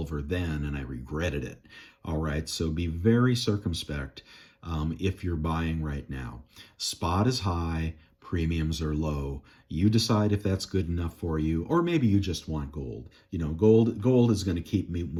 then, and I regretted it. All right, so be very circumspect if you're buying right now. Spot is high, premiums are low. You decide if that's good enough for you, or maybe you just want gold. You know, gold is going to keep me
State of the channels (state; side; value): identical; both; correlation 1.00